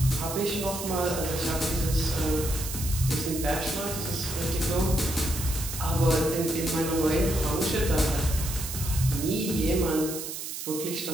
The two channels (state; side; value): noise; right; hiss, 7 dB below the sound